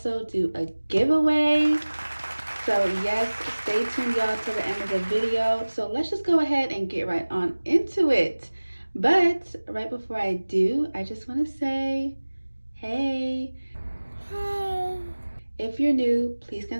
do a giveaway. So yes, stay tuned y'all to the end of the video. So let's just go ahead and get right on into it. But right before I do, I just want to say, hey. If you're new, please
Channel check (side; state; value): both; inverted; correlation -1.00